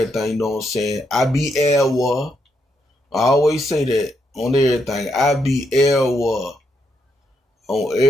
you know what I'm saying? I be Elwa. I always say that on everything. I be Elwa on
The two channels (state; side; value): normal; both; correlation 0.79